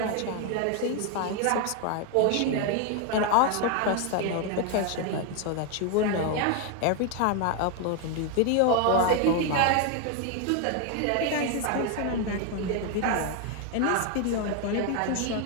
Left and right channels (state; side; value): different; both; correlation 0.01